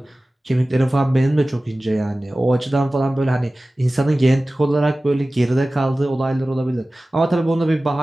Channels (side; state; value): both; normal; correlation 0.97